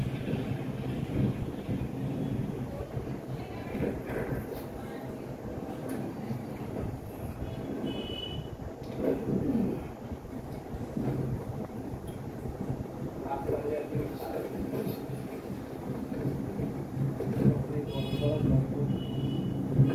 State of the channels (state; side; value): identical; both; correlation 1.00